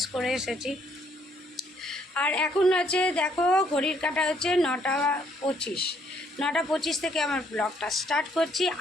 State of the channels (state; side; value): normal; both; correlation 0.68